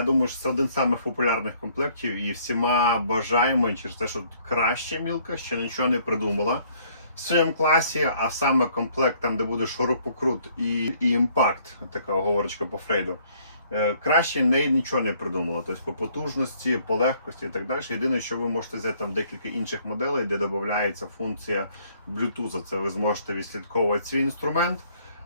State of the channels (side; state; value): both; inverted; correlation -0.63